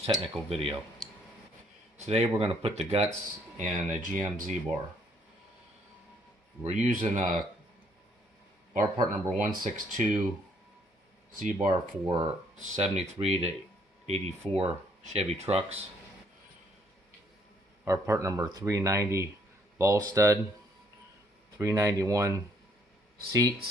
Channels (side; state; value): both; normal; correlation 0.66